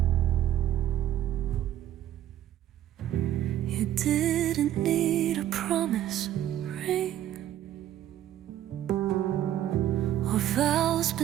You didn't need a promise ring or vows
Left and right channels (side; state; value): left; quieter; 12.1 dB